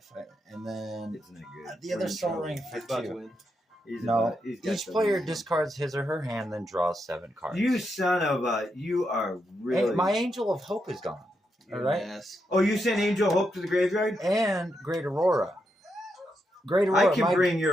and then It's not good. the We're other in Soul trouble. Ring He's about to for 2. win. He's No, about- he's got each the player lead. discards his or her hand, then draws 7 cards. You son of a! You are really. Hey, my Angel of Hope is gone. You're All right. an ass. Oh, you sent Angel Hope to the graveyard? And Great Aurora. Great Aurora. I can bring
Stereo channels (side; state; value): both; normal; correlation 0.83